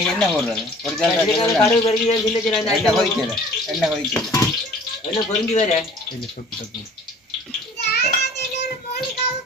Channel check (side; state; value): both; normal; correlation 0.49